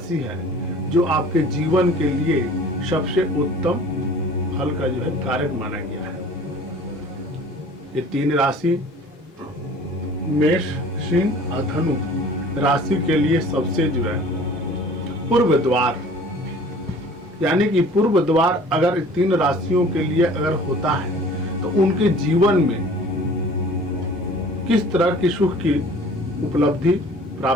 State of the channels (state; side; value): normal; both; correlation 0.47